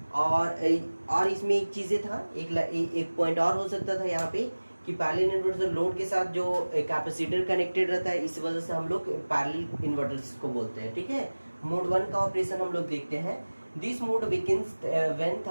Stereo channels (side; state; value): both; inverted; correlation -1.00